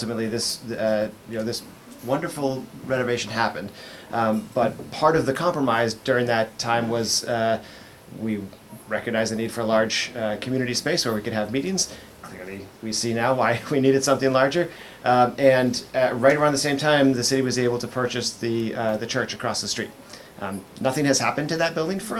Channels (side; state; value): both; identical; correlation 1.00